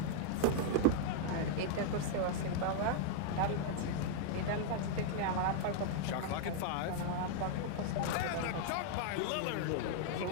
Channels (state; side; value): different; both; correlation -0.01